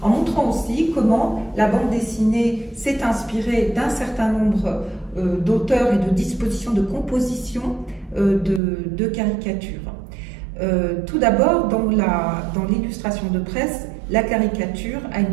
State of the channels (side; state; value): left; drops out; at 8.6 s